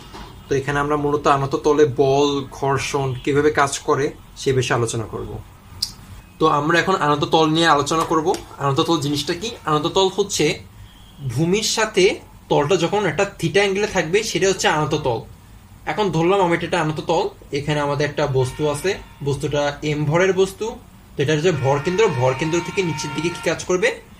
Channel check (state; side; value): identical; both; correlation 1.00